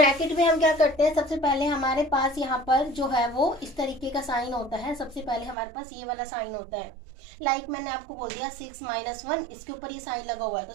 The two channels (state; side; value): drops out; left; at 5.6 s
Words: में हम क्या करते हैं? सबसे पहले हमारे पास यहाँ पर जो है वो इस तरीके का साइन होता है। सबसे पहले हमारे पास ये वाला साइन होता है। मैंने आपको बोल दिया 6 - 1, इसके ऊपर ये साइन लगा हुआ है। तो